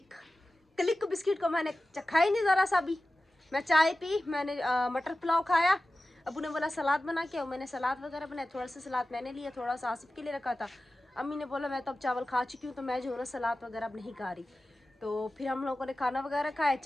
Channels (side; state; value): both; normal; correlation 0.95